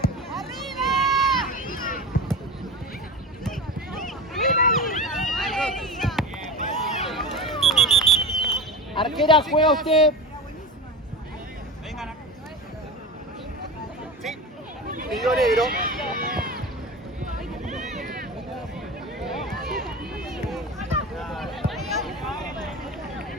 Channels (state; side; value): normal; both; correlation 0.28